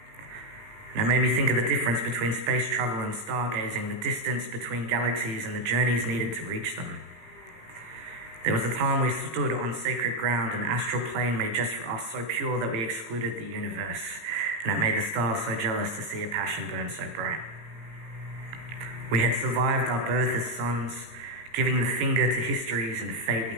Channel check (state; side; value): late; left; 18 ms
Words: And it made me think of the difference between space travel and stargazing, the distance between galaxies and the journeys needed to reach them. There was a time we stood on sacred ground, an astral plane made just for us, so pure that we excluded the universe, and it made the stars so jealous to see a passion burn so bright. We had survived our birth as suns, giving the finger to histories and fate